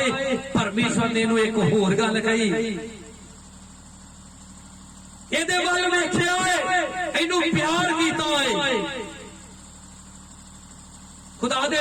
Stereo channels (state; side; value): identical; both; correlation 1.00